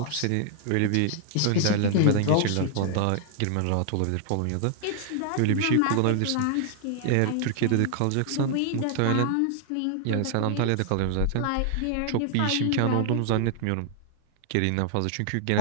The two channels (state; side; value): different; both; correlation 0.00